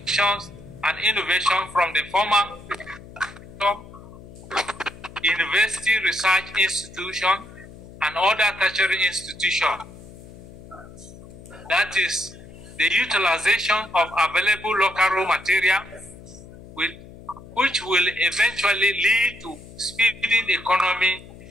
and innovation from the former university research institution and other tertiary institution. That is the utilization of available local raw material, which will eventually lead to speeding economy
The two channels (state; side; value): noise; left; hum, 18 dB below the sound